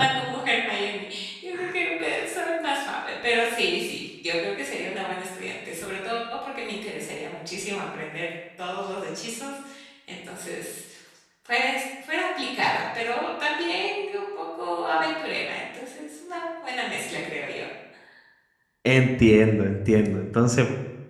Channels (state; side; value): identical; both; correlation 1.00